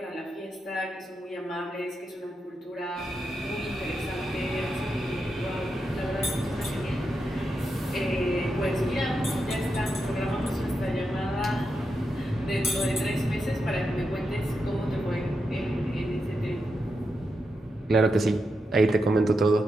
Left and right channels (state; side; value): normal; both; correlation 0.86